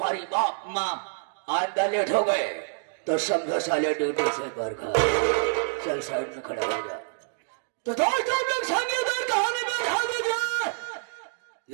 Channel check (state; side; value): silent; left; digital silence